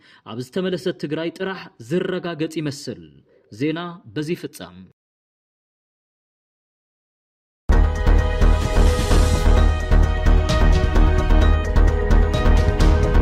ኣብ ዝተመለሰት ትግራይ ጥራሕ ዝረጋገጽ ይመስል ዜና በዚ ፍጻም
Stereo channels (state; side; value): identical; both; correlation 1.00